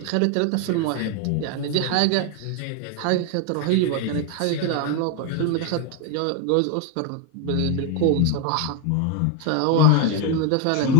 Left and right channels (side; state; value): both; different; correlation 0.01